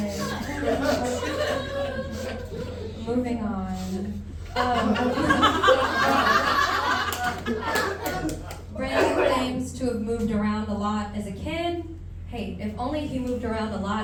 Moving on. Brandon claims to have moved around a lot as a kid. Hey, if only he moved around a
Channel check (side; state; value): both; identical; correlation 1.00